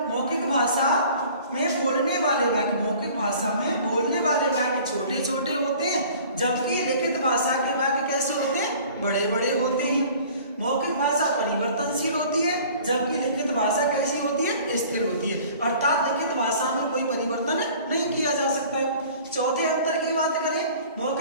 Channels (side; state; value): both; inverted; correlation -0.48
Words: मौखिक भाषा में बोलने वाले वाक्य, मौखिक भाषा में बोलने वाले वाक्य छोटे छोटे होते हैं, जबकि लिखित भाषा के वाक्य कैसे होते हैं, बड़े बड़े होते हैं। मौखिक भाषा परिवर्तनशील होती है, जबकि लिखित भाषा कैसी होती है, स्थिर होती है, अर्थात लिखित भाषा में कोई परिवर्तन नहीं किया जा सकता है। चौथे अंतर की बात करें,